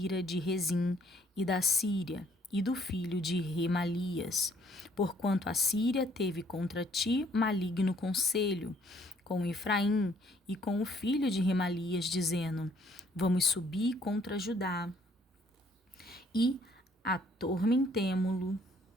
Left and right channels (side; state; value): both; normal; correlation 0.63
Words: de Rezim e da Síria, e do filho de Remalias, porquanto a Síria teve contra ti maligno conselho, com Efraim e com o filho de Remalias, dizendo: vamos subir contra Judá, e atormentemo-lo,